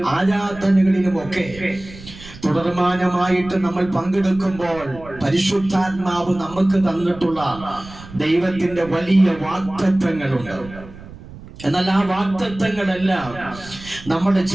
ആരാധനകളിലും ഒക്കെ തുടർമാനമായിട്ട് നമ്മൾ പങ്കെടുക്കുമ്പോൾ പരിശുദ്ധാത്മാവ് നമുക്ക് തന്നിട്ടുള്ള ദൈവത്തിന്റെ വലിയ വാഗ്ദത്തങ്ങളുണ്ട്. എന്നാൽ ആ വാഗ്ദത്തങ്ങളെല്ലാം നമ്മുടെ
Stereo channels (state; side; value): noise; right; rumble, 17 dB below the sound